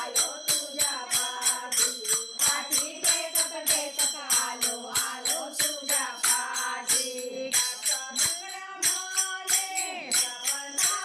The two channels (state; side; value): identical; both; correlation 1.00